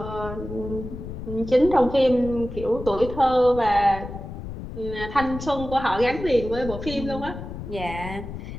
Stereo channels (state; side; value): noise; left; rumble, 9 dB below the sound